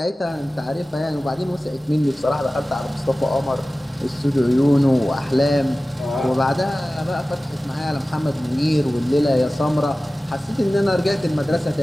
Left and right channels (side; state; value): both; normal; correlation 0.96